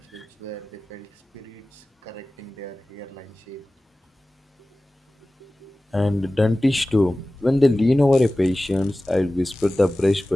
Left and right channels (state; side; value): normal; both; correlation 0.97